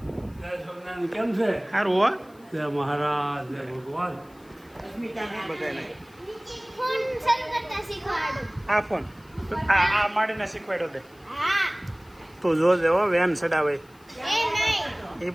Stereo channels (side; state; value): left; noise; hiss, 30 dB below the sound